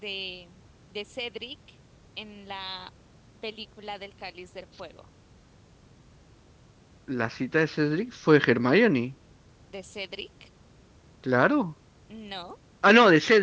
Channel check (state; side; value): identical; both; correlation 1.00